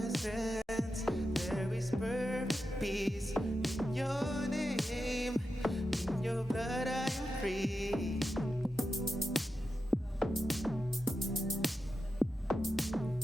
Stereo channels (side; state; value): both; normal; correlation 0.90